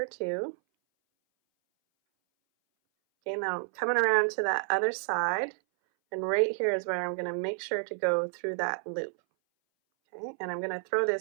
2. Okay, now I'm coming around to that other side, and right here is where I'm going to make sure to go through that loop. Okay, and I'm going to throw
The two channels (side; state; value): left; silent; 58 dB below the other